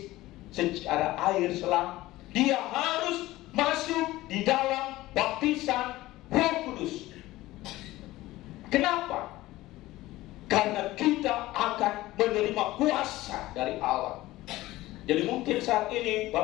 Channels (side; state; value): right; quieter; 17.4 dB